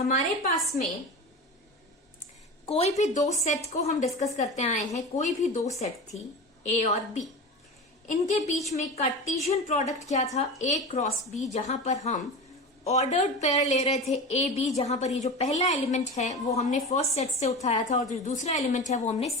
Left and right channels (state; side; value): normal; both; correlation 0.29